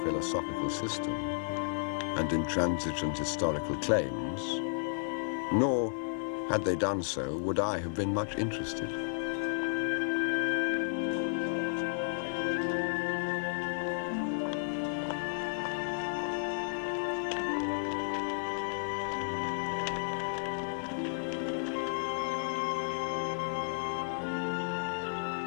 system and intransigent historical claims, nor, had they done so, would I have been much interested.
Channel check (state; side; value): silent; right; digital silence